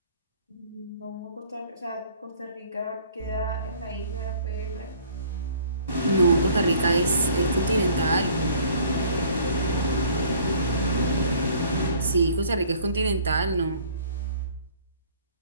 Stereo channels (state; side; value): inverted; both; correlation -0.55